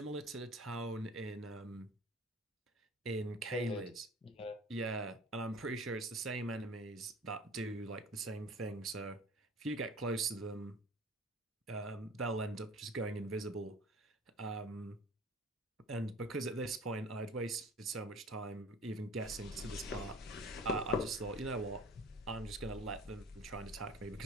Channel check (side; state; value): both; normal; correlation 0.44